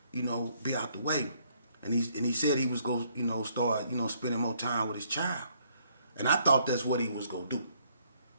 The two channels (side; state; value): both; inverted; correlation -0.68